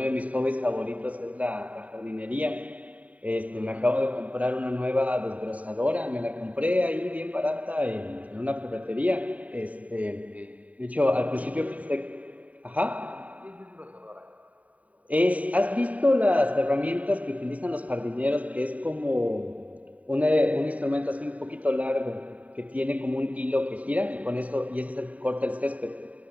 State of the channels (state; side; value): late; left; 0.069 ms